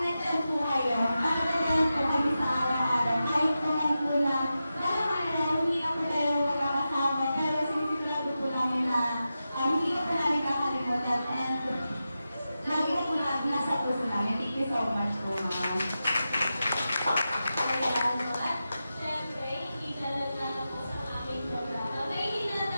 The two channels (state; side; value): inverted; both; correlation -0.91